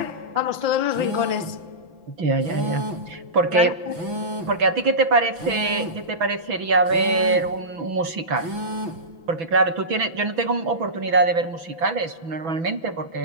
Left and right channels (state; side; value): late; left; 6.0 ms